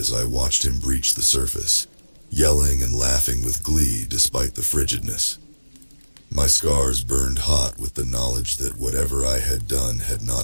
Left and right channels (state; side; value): inverted; both; correlation -1.00